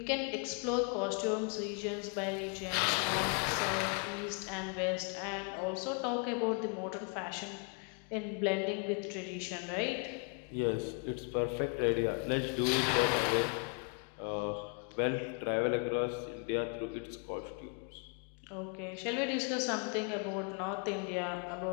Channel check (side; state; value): right; quieter; 35.8 dB